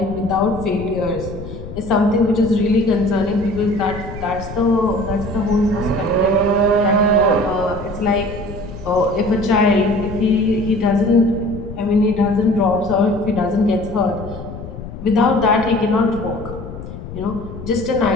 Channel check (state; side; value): noise; left; rumble, 11 dB below the sound